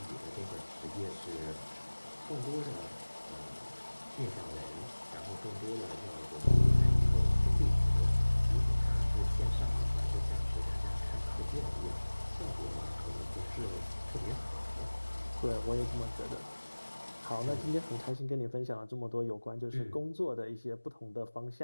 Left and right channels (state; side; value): inverted; both; correlation -1.00